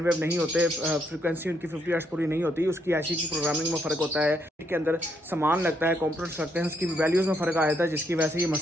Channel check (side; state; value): both; normal; correlation 0.75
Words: वेव नहीं होते, फ्रीक्वेंसी उनकी 50 हर्ट्ज पूरी नहीं होती, उसकी ऐसी की प्रोग्रामिंग में फ़र्क होता है, के अंदर सामान लगता है, कंपोनेंट्स लगते हैं, उसकी वैल्यूज़ में फ़र्क आ जाता है, जिसकी वजह से ये